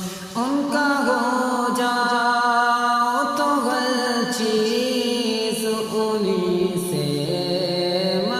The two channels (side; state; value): both; identical; correlation 1.00